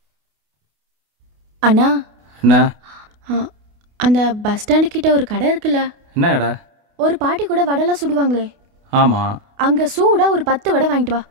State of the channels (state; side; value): late; left; 28 ms